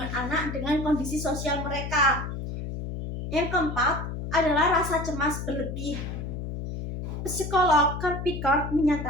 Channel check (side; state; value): left; noise; hum, 6 dB below the sound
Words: anak dengan kondisi sosial mereka. Yang keempat adalah rasa cemas berlebih. Psikolog Kirby Card